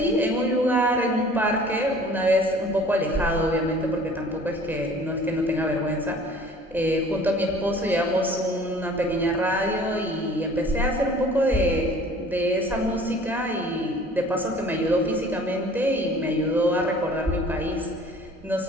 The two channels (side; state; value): both; normal; correlation 0.50